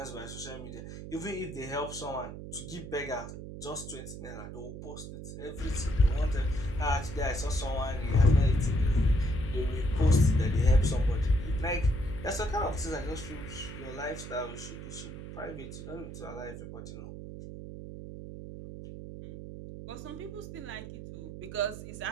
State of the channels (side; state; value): right; noise; hum, 10 dB below the sound